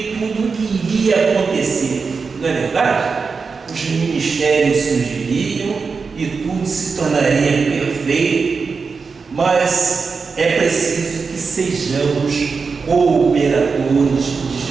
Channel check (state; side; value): quieter; left; 4.9 dB